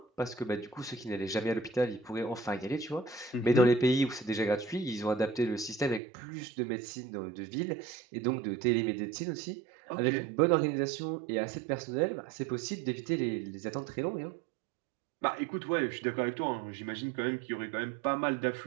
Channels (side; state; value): left; drops out; at 6.0 s